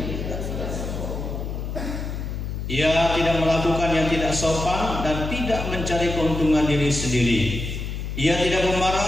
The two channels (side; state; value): left; noise; hum, 5 dB below the sound